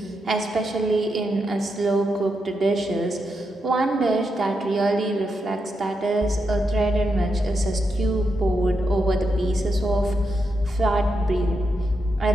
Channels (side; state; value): both; normal; correlation 0.84